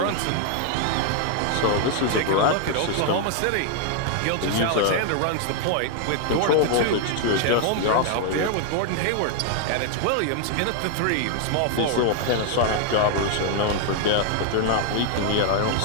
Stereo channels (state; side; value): different; both; correlation 0.00